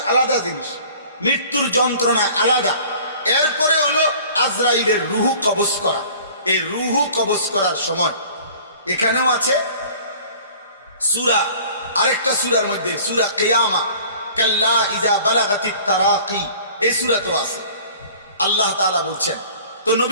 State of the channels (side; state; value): both; inverted; correlation -0.48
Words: আলাদা জিনিস, মৃত্যুর যন্ত্রণা আলাদা। এরপরে হলো আজরাইলের রুহু কবজ করা। এই রুহু কবজ করার সময় এখানেও আছে সূরা, আরেকটা সূরার মধ্যে সূরা কিয়ামা, কাল্লা ইজা বালাগাতিত তারাকি, এই সূরাতেও আছে। আল্লাহ তাআলা বলছেন, তো